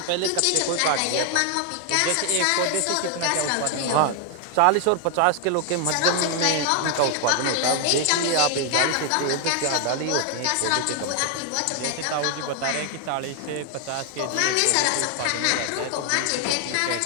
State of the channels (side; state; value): both; different; correlation 0.00